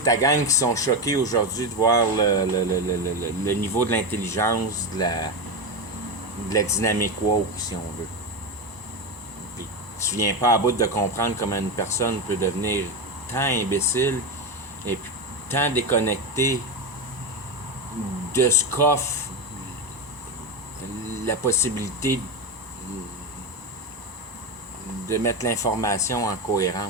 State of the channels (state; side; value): late; left; 1.0 ms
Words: gang qui sont choqués aujourd'hui de voir le niveau de l'intelligence, de la dynamique woke, si on veut. Puis tu viens pas à bout de comprendre comment une personne peut devenir tant imbécile et puis tant déconnectée de ce qu'offre la possibilité de mettre l'information en